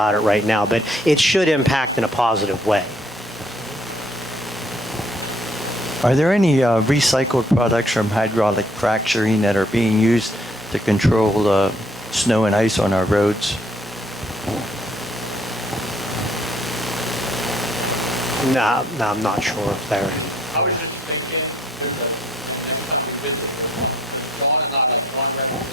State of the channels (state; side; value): normal; both; correlation 0.64